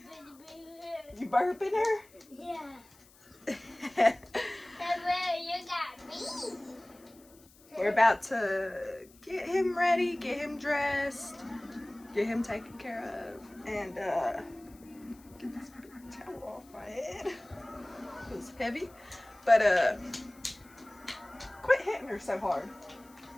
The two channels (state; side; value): noise; left; hiss, 26 dB below the sound